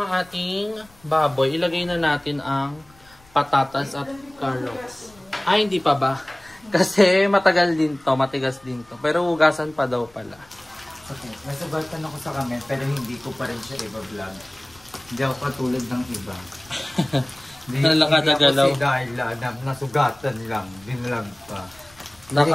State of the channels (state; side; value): noise; left; rumble, 28 dB below the sound